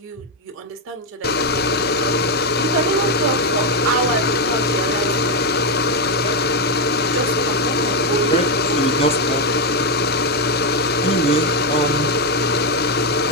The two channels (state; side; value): normal; both; correlation 0.04